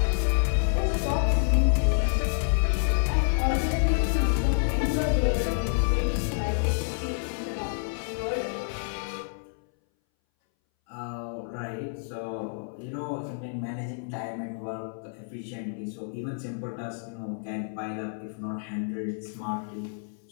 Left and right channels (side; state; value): right; silent; 59 dB below the other